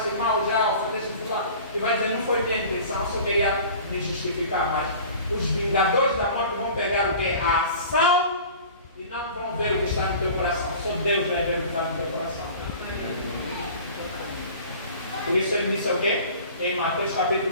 mal, já ofendeste fulano, e vai dizer, não foi minha intenção, eu só queria me justificar, mas os vingadores da morte vão pegar o quê? A ação e não vão ver o que está no teu coração, só Deus vai ver o que está no teu coração. Por isso ele disse o quê? Em Mateus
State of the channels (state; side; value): inverted; both; correlation -0.42